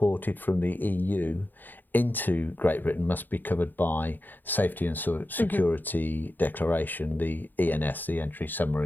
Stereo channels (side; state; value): right; late; 0.088 ms